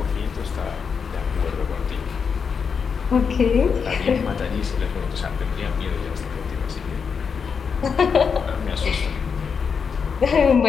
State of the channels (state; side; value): quieter; right; 6.1 dB